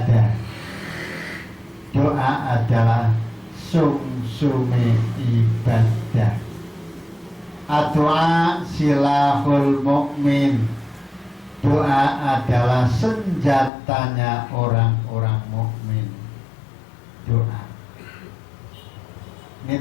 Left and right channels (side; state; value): right; drops out; at 13.7 s